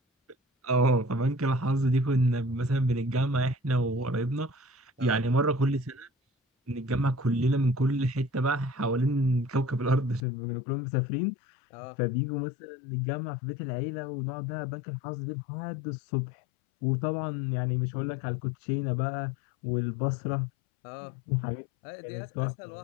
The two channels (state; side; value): drops out; right; at 10.2 s